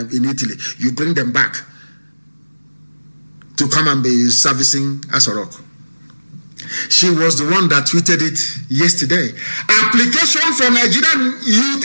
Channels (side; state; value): both; inverted; correlation -1.00